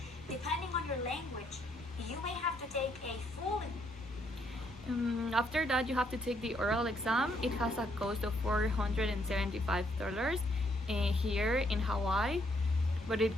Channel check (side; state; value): both; normal; correlation 0.71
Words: Depending on your language, you may have to take a full. After that, you have to take the oral exam. It has a cost of $475 here in Hawaii, but it